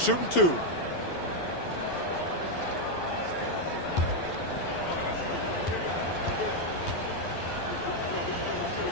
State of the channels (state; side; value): late; right; 12 ms